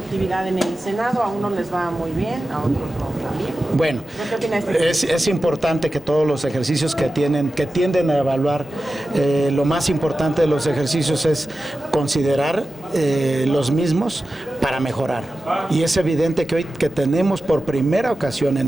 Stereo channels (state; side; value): normal; both; correlation 0.94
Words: en el Senado. A unos les va muy bien, a otros no tan bien. Bueno, ¿Qué opina de este? es importante que todos los ejercicios que tienden a evaluar, lo más importante de los ejercicios es considerar los mismos para mejorar. Y es evidente que hoy que tenemos por primera ocasión en